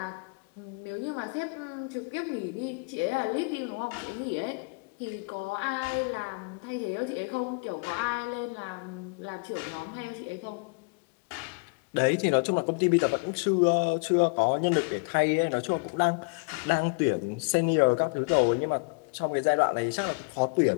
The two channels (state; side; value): quieter; right; 33.6 dB